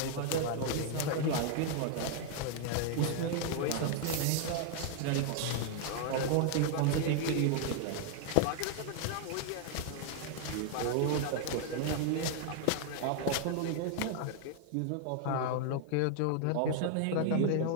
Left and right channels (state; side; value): different; both; correlation 0.00